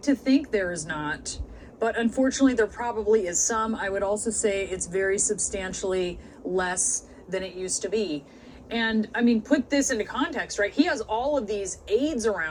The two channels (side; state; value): both; identical; correlation 1.00